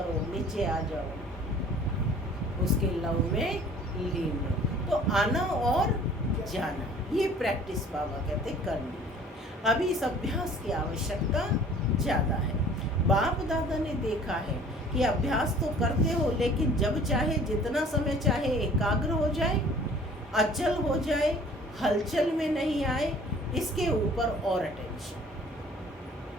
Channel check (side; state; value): both; normal; correlation 0.50